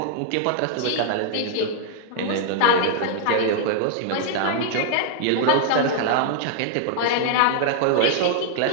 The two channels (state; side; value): different; both; correlation -0.01